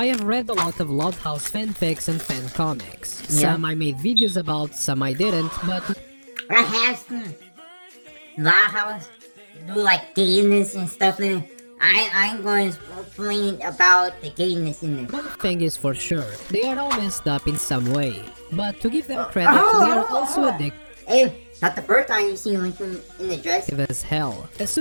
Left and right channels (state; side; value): inverted; both; correlation -1.00